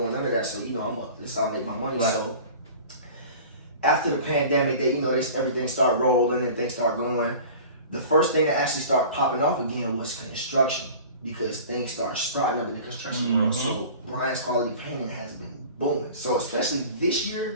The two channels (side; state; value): both; inverted; correlation -0.41